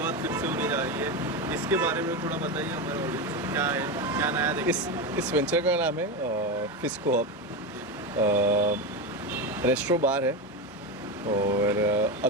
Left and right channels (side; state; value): both; normal; correlation 0.16